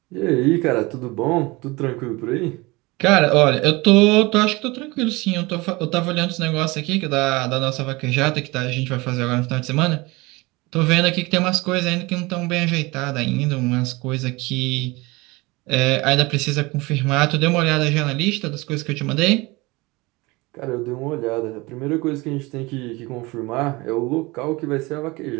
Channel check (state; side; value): quieter; left; 23.3 dB